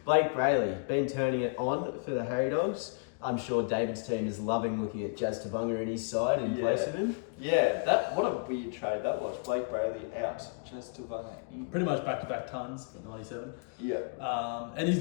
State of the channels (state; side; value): quieter; right; 37.3 dB